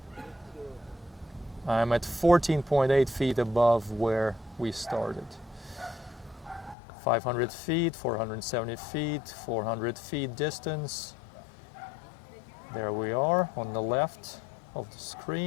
I'm at 14.8 feet above where we started. 500 feet, 470 feet, 400 feet distance. There we are on the left of the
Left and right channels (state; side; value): drops out; right; at 6.8 s